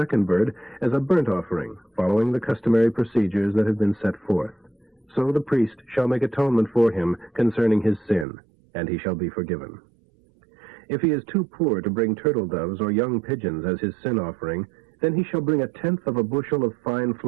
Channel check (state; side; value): drops out; left; at 8.2 s